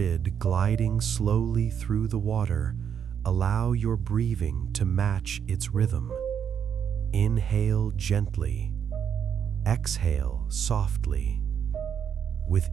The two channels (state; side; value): quieter; left; 8.1 dB